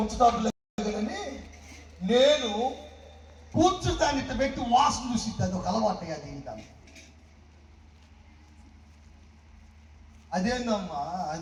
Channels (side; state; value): both; identical; correlation 1.00